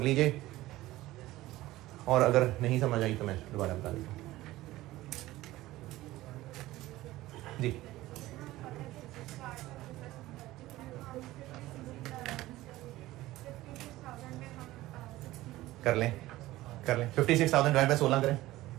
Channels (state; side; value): quieter; left; 17.0 dB